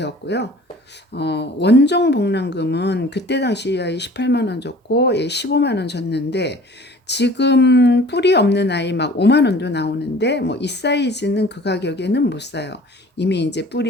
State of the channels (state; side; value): normal; both; correlation 0.47